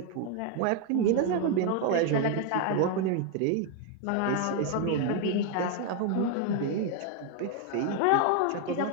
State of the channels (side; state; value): both; different; correlation 0.01